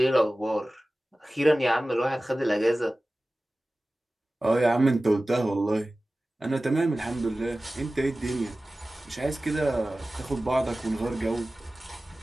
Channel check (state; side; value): normal; both; correlation 0.97